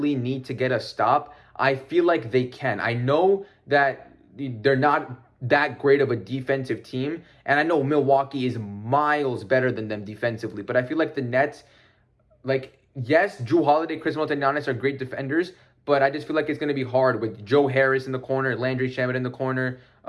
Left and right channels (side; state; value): both; identical; correlation 1.00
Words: need to get a stop, I feel like they can. I know that they're not that great of a defensive team, and I know Milwaukee is miles better than them defensively, but I feel like the Nets, yes, Jrue Holiday, Khris Middleton, Giannis are great defenders, but I just feel like it's going to be hard with Joe Harris in the corner, Landry Shamet in the corner.